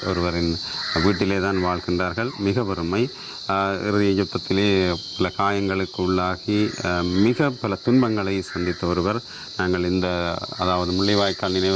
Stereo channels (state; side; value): identical; both; correlation 1.00